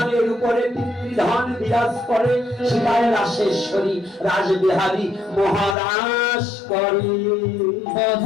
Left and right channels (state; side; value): drops out; right; at 5.8 s